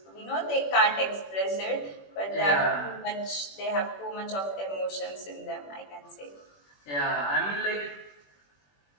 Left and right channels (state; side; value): late; right; 21 ms